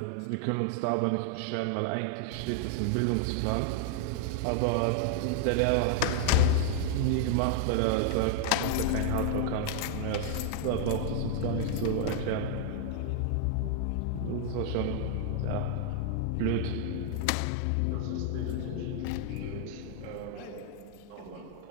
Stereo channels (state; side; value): different; both; correlation 0.00